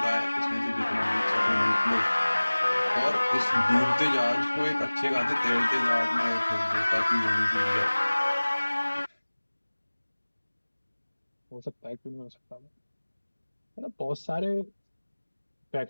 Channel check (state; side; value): inverted; both; correlation -1.00